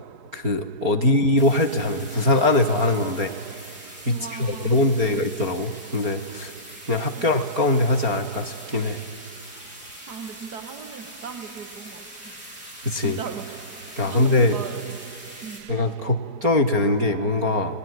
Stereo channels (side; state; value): left; late; 4.3 ms